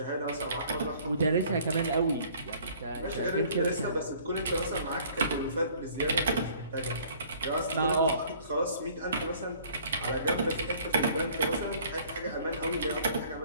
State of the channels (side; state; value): both; inverted; correlation -0.55